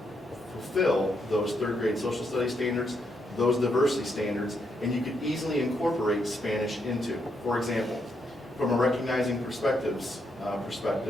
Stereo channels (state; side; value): normal; both; correlation 0.78